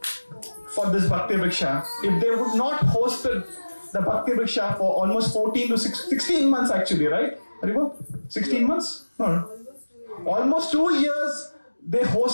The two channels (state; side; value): inverted; both; correlation -1.00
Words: for this Bhakti Vriksha. If they would not hosted the Bhakti Vriksha for almost 14 to 16 months actually, right? 16 months? No. Almost 2 years they